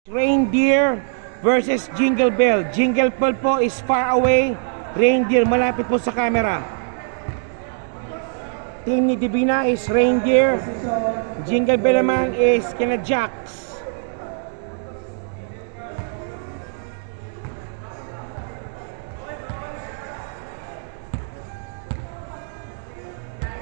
Reindeer versus Jingle Bell. Jingle Bell po is far away. Reindeer malapit po sa camera. Team ni Divina is Reindeer. Jingle Bell naman is kina Jax.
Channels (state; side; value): silent; left; digital silence